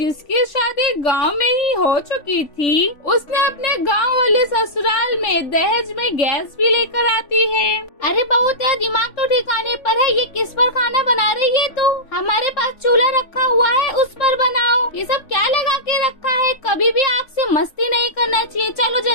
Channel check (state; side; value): late; right; 3.5 ms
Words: शादी गांव में ही हो चुकी थी, उसने अपने गांव वाले ससुराल में दहेज में गैस भी लेकर आती है। अरे बहू, तेरा दिमाग तो ठिकाने पर है। ये किस पर खाना बना रही है तू? हमारे पास चूल्हा रखा हुआ है, उस पर बनाओ। ये सब क्या लगा के रखा है? कभी भी आग से मस्ती नहीं करना चाहिए। चलो